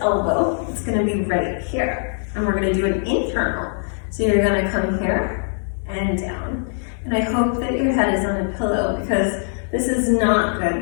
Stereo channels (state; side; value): silent; right; 65 dB below the other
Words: elbow, it's gonna be right here. And we're gonna do an internal. So you're gonna come here and down. And I hope that your head is on a pillow because this is not good